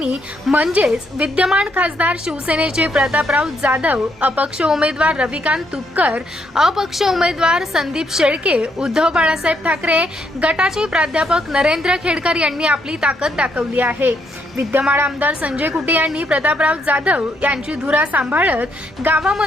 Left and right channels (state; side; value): normal; both; correlation 0.74